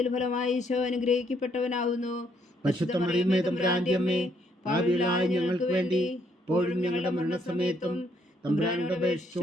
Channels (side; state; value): both; normal; correlation 0.70